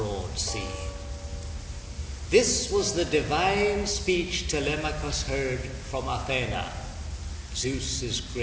sea. This was the divine speech Telemachus heard from Athena, Zeus's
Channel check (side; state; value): both; identical; correlation 1.00